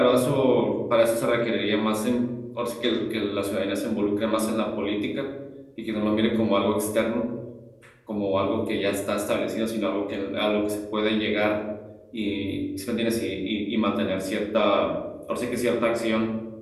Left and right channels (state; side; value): identical; both; correlation 1.00